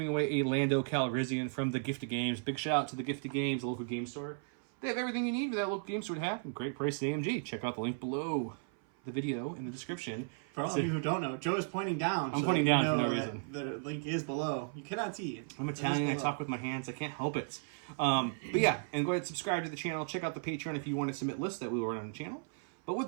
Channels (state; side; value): silent; left; 54 dB below the other